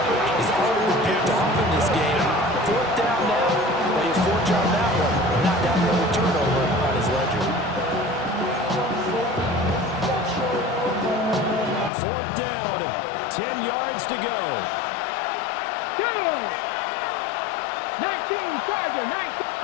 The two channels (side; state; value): right; drops out; at 11.9 s